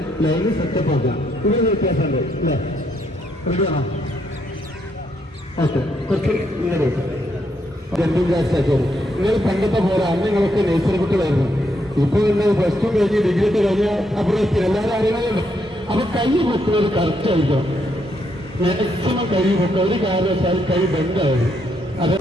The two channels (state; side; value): normal; both; correlation 0.76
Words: ലൈന് സെറ്റപ്പ് ആക്കാം. ഇതിന് വ്യത്യാസമുണ്ട് അല്ലേ? റെഡിയാണോ? ഓക്കെ, കുറച്ച് ഇങ്ങനെ ജമ്പിങ് ജാക്സ് ആക്കിയത്. നിങ്ങൾ പണ്ടത്തെ പോലെ അന്ന് നിങ്ങളൊക്കെ നേച്ചർ കുട്ടികളായിരുന്നു. ഇപ്പൊ നിങ്ങൾ പ്ലസ് ടു കഴിഞ്ഞ് ഡിഗ്രി ഒക്കെ കഴിഞ്ഞാൽ അപ്പുറത്ത് എല്ലാവരും അറിയണമല്ലോ. അപ്പൊ കൈ പൊക്കുന്നത് കറക്റ്റ് ആയിരിക്കണം. മാക്സിമം കൈ പൊക്കുക. ഒരു കാരണവശാൽ കൈ ബെൻഡാവും.